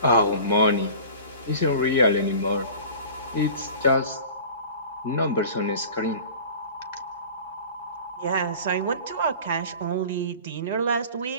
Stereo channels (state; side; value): inverted; both; correlation -0.41